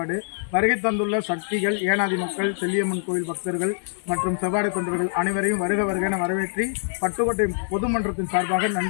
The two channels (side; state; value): right; silent; digital silence